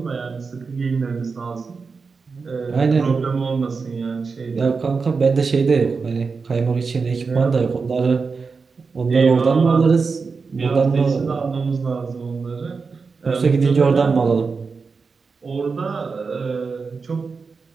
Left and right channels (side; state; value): left; quieter; 4.8 dB